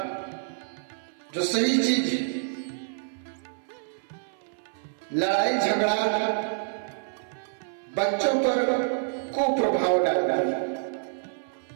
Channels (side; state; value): left; silent; 60 dB below the other